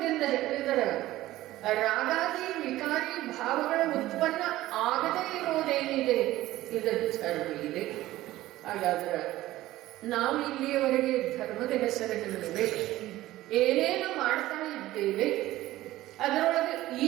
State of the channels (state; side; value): quieter; left; 16.0 dB